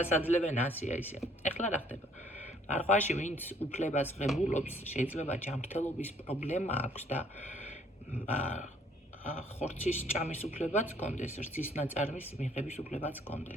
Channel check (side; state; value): both; normal; correlation 0.62